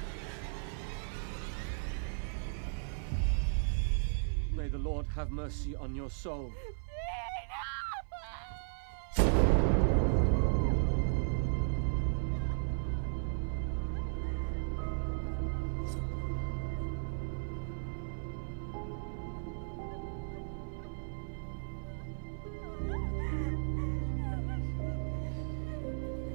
May the Lord have mercy on your soul.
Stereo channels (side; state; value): left; silent; 54 dB below the other